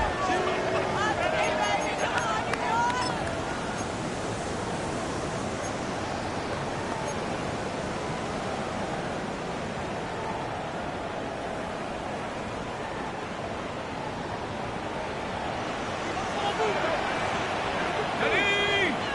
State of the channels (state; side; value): identical; both; correlation 1.00